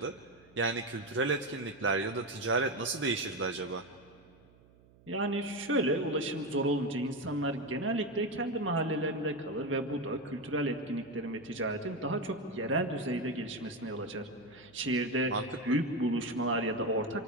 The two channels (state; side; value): noise; right; hum, 27 dB below the sound